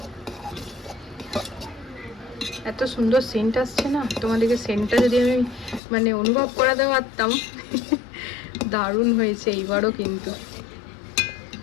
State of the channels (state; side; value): drops out; right; at 5.8 s